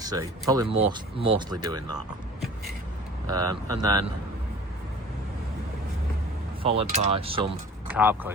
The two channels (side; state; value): both; normal; correlation 0.44